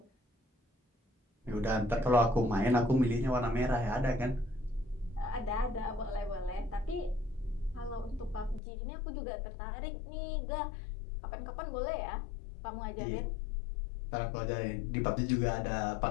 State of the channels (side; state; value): right; drops out; at 8.6 s